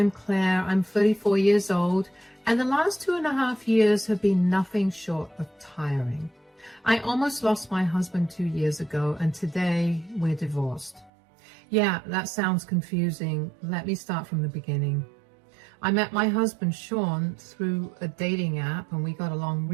Claire. I'm 34 years old, and the last 2.5 years have been nothing short of tiring. I almost lost my husband 2 years ago, and today we're divorced. Yeah, that sounds confusing. Let me start from the beginning. I met my husband, Sean, through a dating app, and we got along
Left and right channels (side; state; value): left; drops out; at 11.1 s